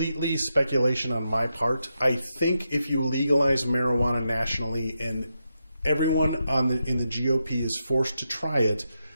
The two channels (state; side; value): inverted; both; correlation -0.86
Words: speculation on my part. I think if you legalize marijuana nationally and everyone in the GOP is forced to try it,